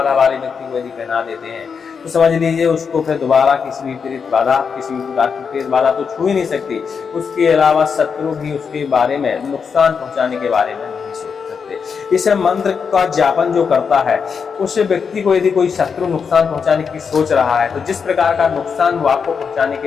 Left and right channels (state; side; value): quieter; right; 6.1 dB